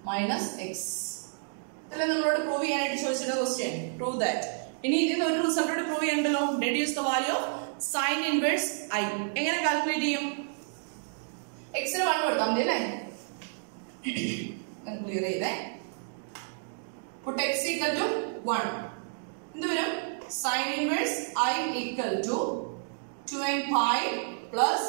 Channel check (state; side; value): silent; left; digital silence